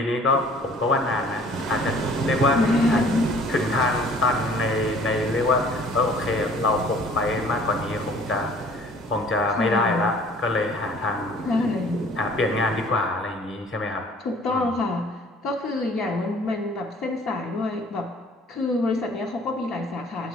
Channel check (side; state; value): both; normal; correlation 0.53